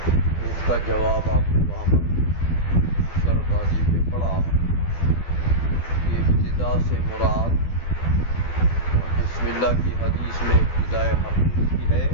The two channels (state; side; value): late; right; 12 ms